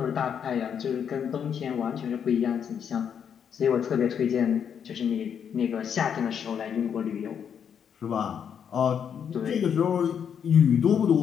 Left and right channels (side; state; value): right; quieter; 7.9 dB